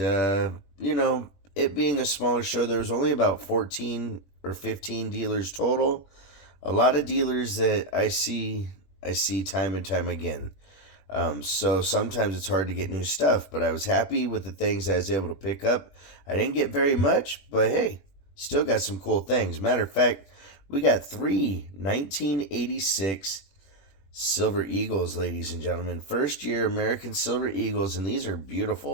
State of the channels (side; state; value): right; late; 21 ms